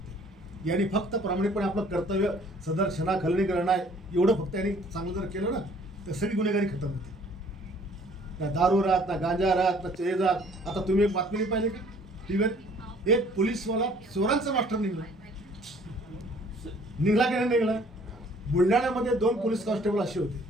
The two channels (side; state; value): both; normal; correlation 0.57